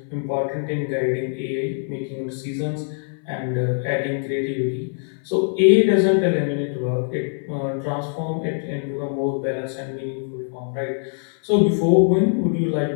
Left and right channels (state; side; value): silent; right; 64 dB below the other